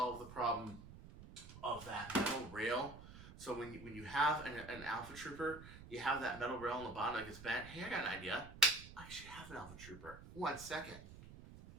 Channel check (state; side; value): noise; right; rumble, 15 dB below the sound